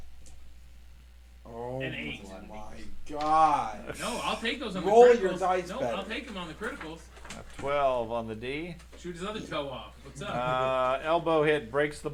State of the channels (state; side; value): identical; both; correlation 1.00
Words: Oh An 8. my god. No, I'll take those on Roll the your criticals. dice No, better. I'll take them on the criticals. A 12 on the D. Shoot his other toe off. What's up? Elbow hit, breaks the